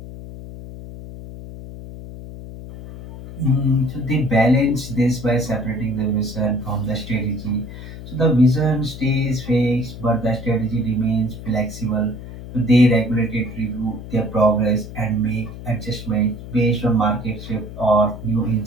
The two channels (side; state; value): left; noise; hum, 12 dB below the sound